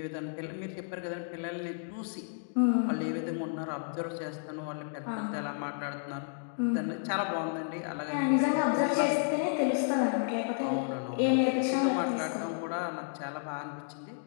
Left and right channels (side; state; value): right; silent; 57 dB below the other